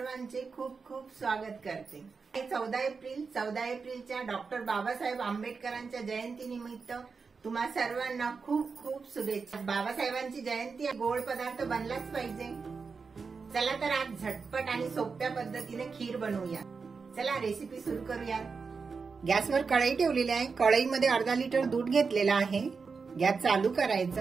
खूप खूप स्वागत करते. 14 एप्रिलच्या डॉक्टर बाबासाहेब आंबेडकरांच्या जयंतीनिमित्त तुम्हा सर्वांना खूप खूप शुभेच्छा. बाबासाहेबांची जयंती गोड पदार्थ बनलाच पाहिजे. चला तर आज झटपट आणि सोप्या पद्धतीने खीर बनवूया. चला रेसिपी सुरू करूया. गॅसवर कढई ठेवलेली आहे. कढईमध्ये अर्धा लिटर दूध घेतलेला आहे. गॅस चालू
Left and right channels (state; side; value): quieter; left; 5.0 dB